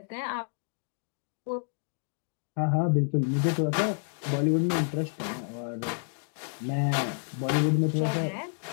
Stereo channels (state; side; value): silent; right; digital silence